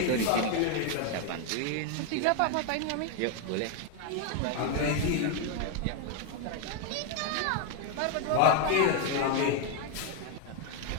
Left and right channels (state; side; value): different; both; correlation 0.01